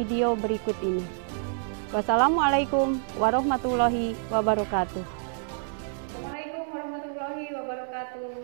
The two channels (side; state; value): left; silent; digital silence